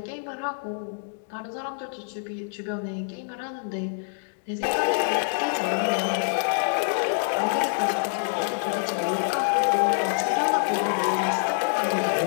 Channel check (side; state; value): right; silent; digital silence